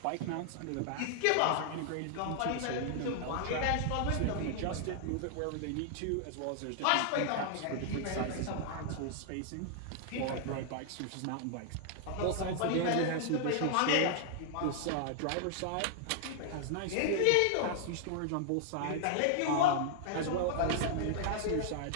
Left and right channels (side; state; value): both; different; correlation -0.01